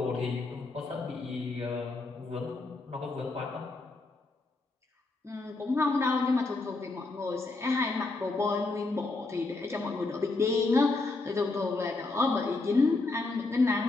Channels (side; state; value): right; quieter; 3.4 dB